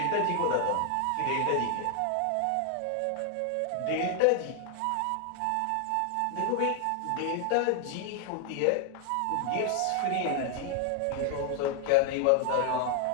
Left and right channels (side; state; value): both; different; correlation 0.00